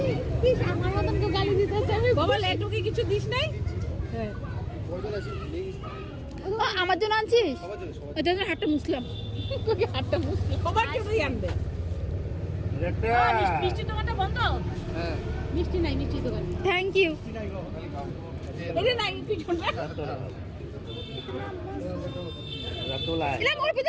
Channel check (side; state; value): both; identical; correlation 1.00